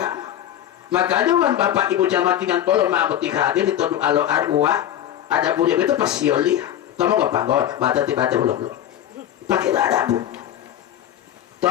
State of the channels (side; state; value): right; quieter; 11.2 dB